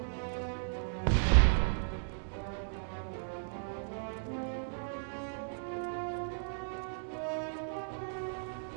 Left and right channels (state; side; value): silent; left; digital silence